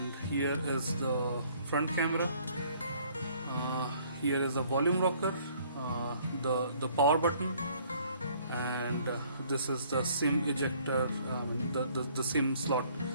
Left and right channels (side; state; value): both; inverted; correlation -0.60